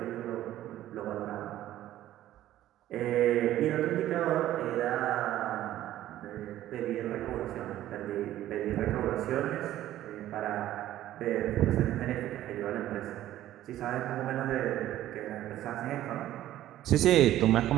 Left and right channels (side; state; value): left; quieter; 13.5 dB